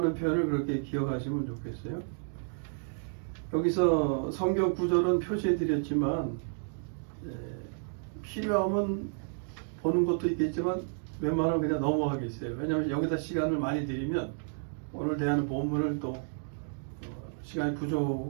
표현을 그렇게 기억하시면 좋겠어요. 여기서 성경 구절은 표시해 드렸지만 필요하면 보는 것도 있겠지만 웬만하면 그냥 넘어가겠어요. 왜냐하면 여기다 시간을 많이 들이면 오늘 대하는 본문을 또 시간이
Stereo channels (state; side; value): silent; left; digital silence